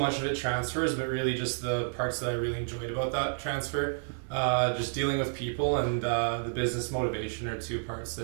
of it transfers, but really just the parts that I really enjoyed about that transfer, just dealing with people and the business motivation are two parts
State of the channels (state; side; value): silent; left; 58 dB below the other